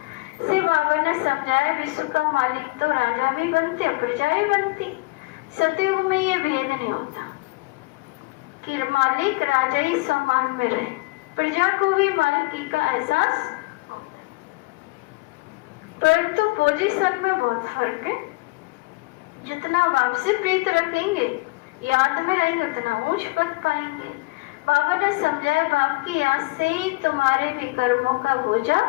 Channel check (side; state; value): right; quieter; 24.4 dB